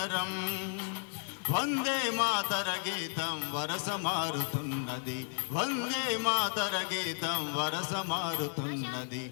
వందే మాతర గీతం వరస మారుతున్నది, వందే మాతర గీతం వరస మారుతున్నది.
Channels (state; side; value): silent; right; 55 dB below the other